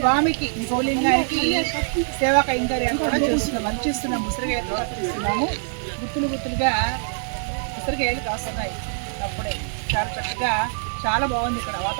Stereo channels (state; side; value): silent; left; digital silence